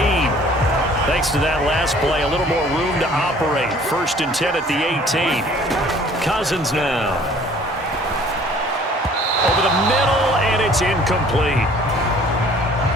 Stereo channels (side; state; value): both; normal; correlation 0.54